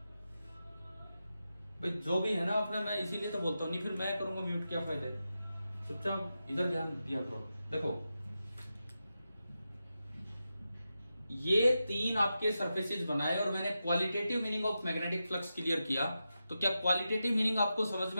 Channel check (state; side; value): inverted; both; correlation -0.90